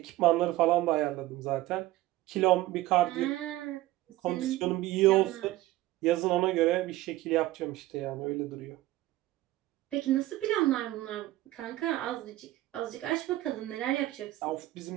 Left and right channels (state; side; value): quieter; left; 16.6 dB